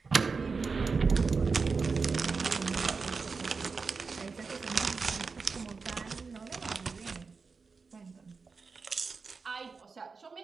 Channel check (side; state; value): left; quieter; 4.7 dB